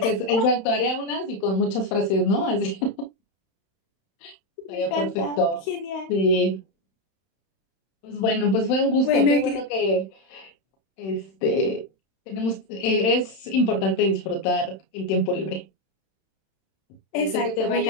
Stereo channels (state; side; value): late; right; 31 ms